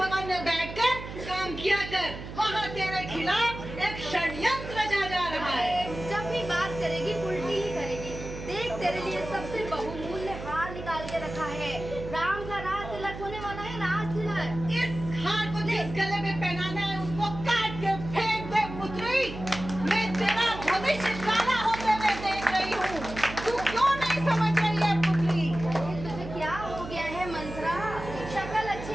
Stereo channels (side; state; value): right; noise; hum, 10 dB below the sound